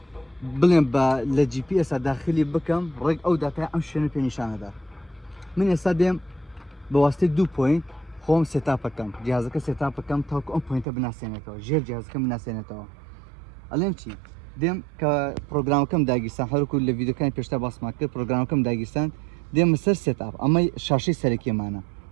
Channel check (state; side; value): drops out; left; at 10.9 s